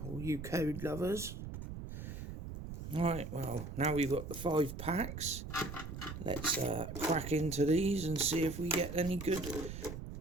all you code lovers. Right, well now we've got the 5 packs. Let's crack into these and see if we get any good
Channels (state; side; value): noise; right; rumble, 8 dB below the sound